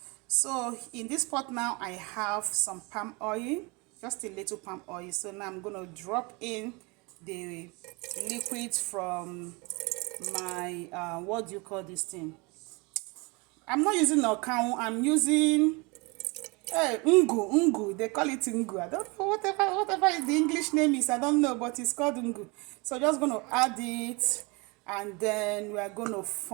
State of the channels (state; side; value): quieter; left; 28.1 dB